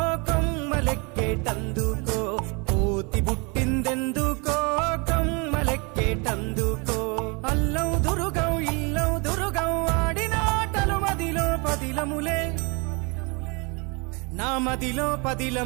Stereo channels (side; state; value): left; quieter; 30.8 dB